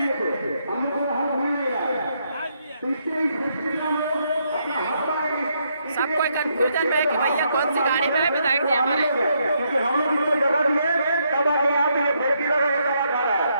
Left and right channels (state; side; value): inverted; both; correlation -0.76